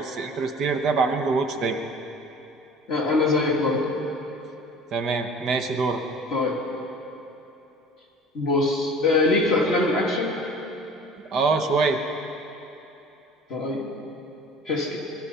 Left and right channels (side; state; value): both; normal; correlation 0.45